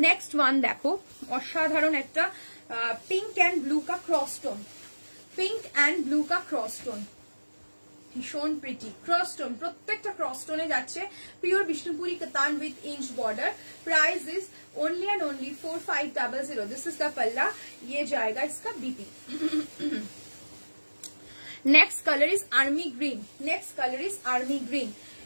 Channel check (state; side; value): inverted; both; correlation -1.00